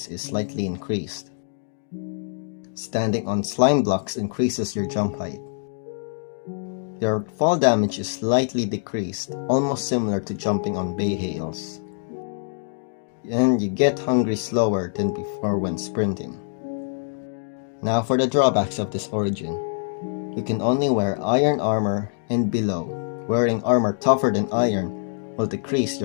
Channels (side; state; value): right; silent; digital silence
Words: is slightly increased. Standing on slime blocks increases your jump height. Your fall damage is slightly decreased, almost similar to jumping on bay hails. And you get hungry slower than before when sprinting. Now for the drawbacks of this origin. You can only wear iron armor and below. Wearing armor tougher than iron will decrease